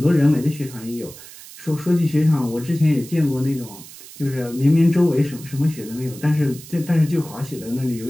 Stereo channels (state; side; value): noise; right; hiss, 17 dB below the sound